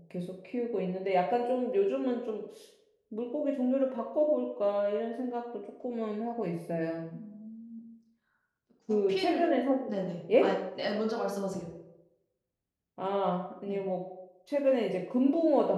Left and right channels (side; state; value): both; identical; correlation 1.00